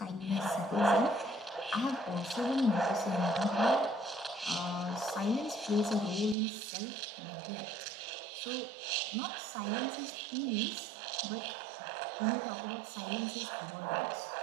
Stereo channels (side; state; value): left; drops out; at 6.4 s